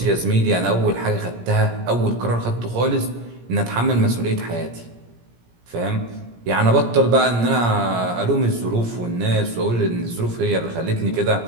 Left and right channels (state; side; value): late; left; 17 ms